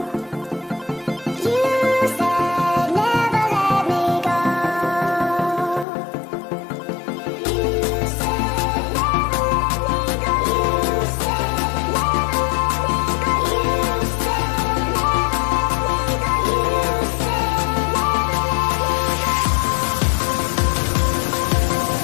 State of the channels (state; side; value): drops out; right; at 5.9 s